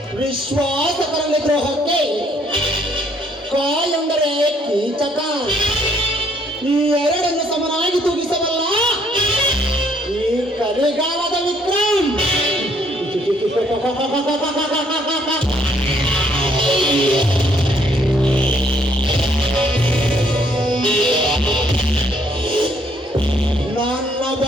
ವಿಶ್ವಾಸಕರಲ್ಲಿ ದ್ರೋಹಕ್ಕೆ ಕ ಎಂದರೆ ಕೀಚಕ. ಈ ಎರಡನ್ನು ಸಮನಾಗಿ ತೂಗಿಸಬಲ್ಲ ಈ ಕಲಿಗಾಲದ ವಿಕ್ರಮ್. ನನ್ನ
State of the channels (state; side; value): normal; both; correlation 0.66